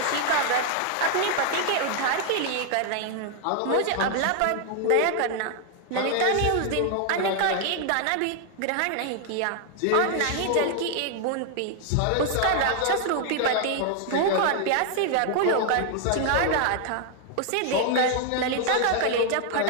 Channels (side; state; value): both; different; correlation 0.00